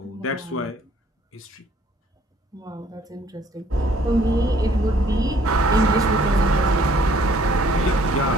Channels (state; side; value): normal; both; correlation 0.60